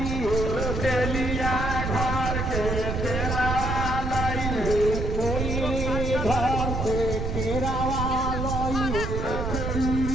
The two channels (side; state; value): right; noise; rumble, 2 dB below the sound